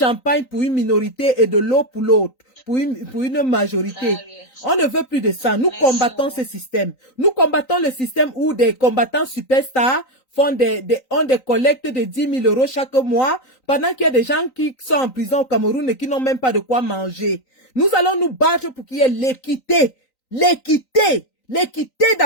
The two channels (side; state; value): right; late; 3.9 ms